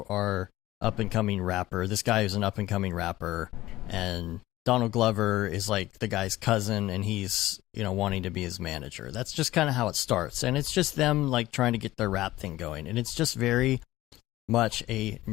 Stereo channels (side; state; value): right; quieter; 16.5 dB